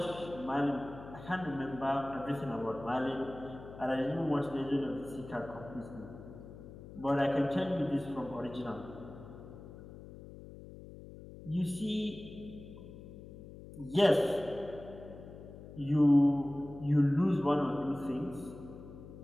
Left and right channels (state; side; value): noise; left; hum, 15 dB below the sound